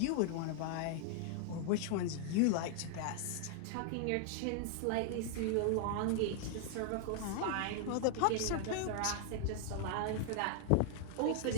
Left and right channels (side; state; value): both; different; correlation 0.00